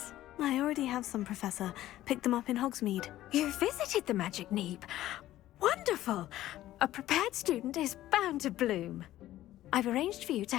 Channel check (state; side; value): quieter; right; 14.3 dB